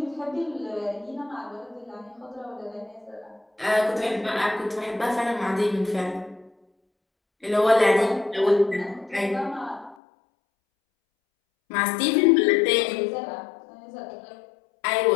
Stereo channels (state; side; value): drops out; right; at 10.0 s